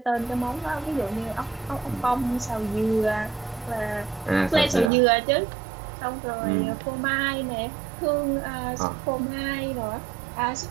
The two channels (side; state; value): left; drops out; at 4.9 s